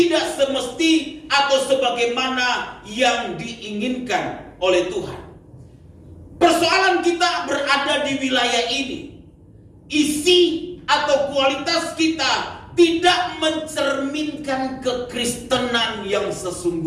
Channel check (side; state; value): both; identical; correlation 1.00